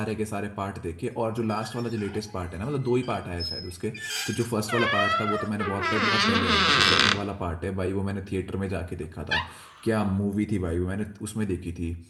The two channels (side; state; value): both; identical; correlation 1.00